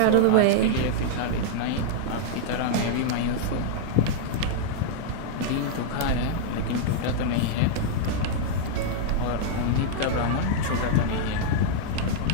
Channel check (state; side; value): different; both; correlation -0.01